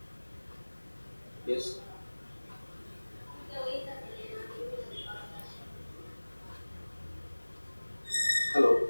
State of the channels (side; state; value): both; inverted; correlation -1.00